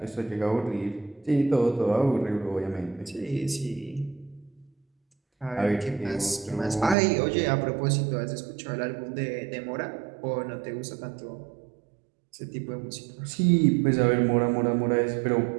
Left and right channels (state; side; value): drops out; left; at 7.0 s